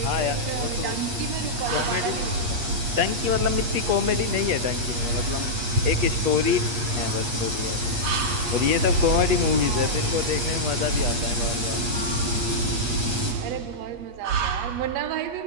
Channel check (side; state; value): left; late; 8.4 ms